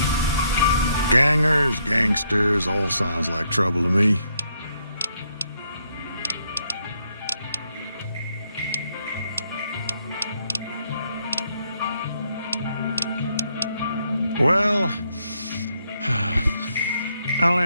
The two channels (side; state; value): both; inverted; correlation -0.74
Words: Gangers, gangsters, all sounds like trouble to me. Well, I'll